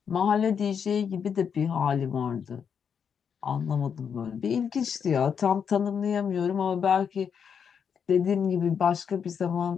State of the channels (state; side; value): quieter; right; 7.1 dB